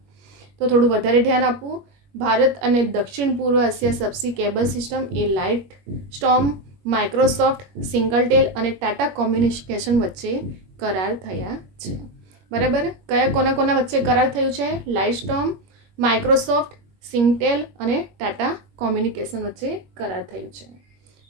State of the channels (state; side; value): late; left; 21 ms